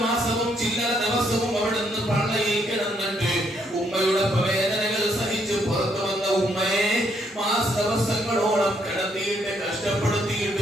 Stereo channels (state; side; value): normal; both; correlation 0.72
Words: മാസവും ചില്ലറ ദിവസവും അവിടെ നിന്ന് പള്ളയിൽ കിടന്നിട്ട് ഉമ്മയുടെ വേദനകൾ സഹിച്ച് പുറത്തു വന്ന ഉമ്മയെ ദിവസങ്ങളോളം കിടത്തിയിട്ട്